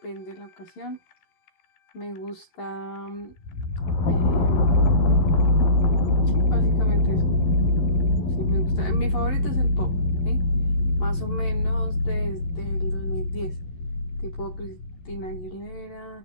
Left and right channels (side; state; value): right; late; 11 ms